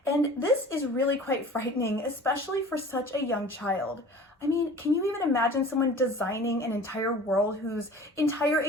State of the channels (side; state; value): both; normal; correlation 0.43